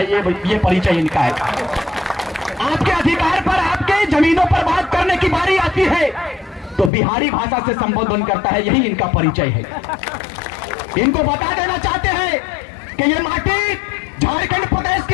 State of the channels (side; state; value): right; drops out; at 6.9 s